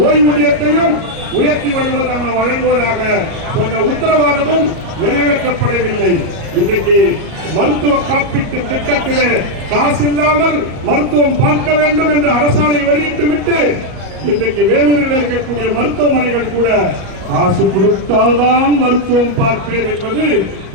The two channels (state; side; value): late; left; 37 ms